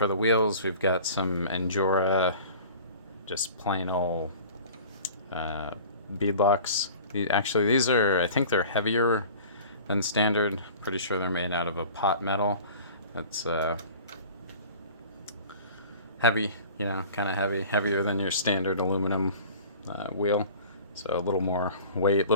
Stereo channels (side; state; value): both; inverted; correlation -0.43